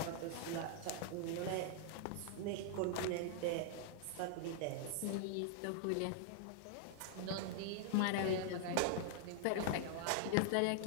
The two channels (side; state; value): both; different; correlation -0.01